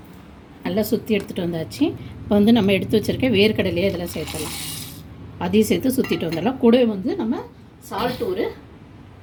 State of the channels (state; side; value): identical; both; correlation 1.00